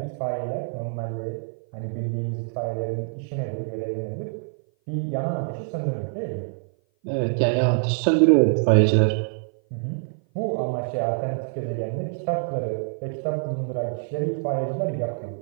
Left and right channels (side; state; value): left; silent; 56 dB below the other